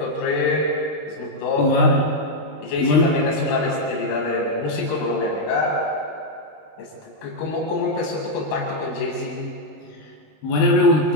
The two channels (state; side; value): late; right; 19 ms